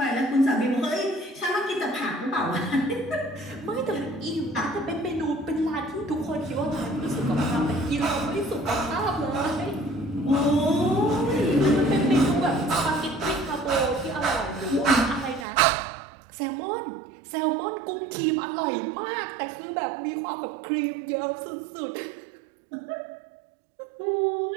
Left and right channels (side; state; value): left; drops out; at 15.5 s